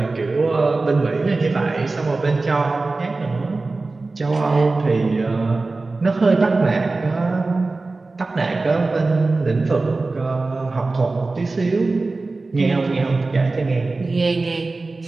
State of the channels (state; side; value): quieter; left; 3.5 dB